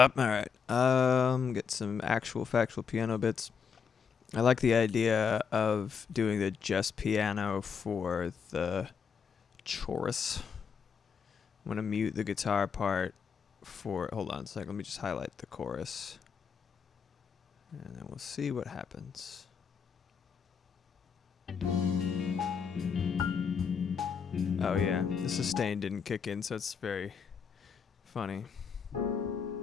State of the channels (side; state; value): right; quieter; 6.4 dB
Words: Alright, get some actual factual piano bits. I like the idea of doing the just piano for the chorus. I'm gonna mute the guitar part for, hold on a sec, let me just highlight the chorus. And then we'll see what happens. Oh yeah, the sustain didn't kick in, so it's very funny.